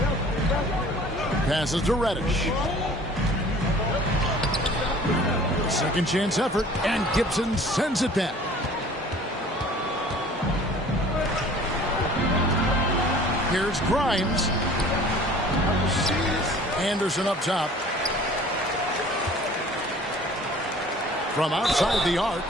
Passes to Reddish. Second chance effort, and Gibson sends it back. Here's Grimes. Anderson up top. From outside the arc.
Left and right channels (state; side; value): normal; both; correlation 0.48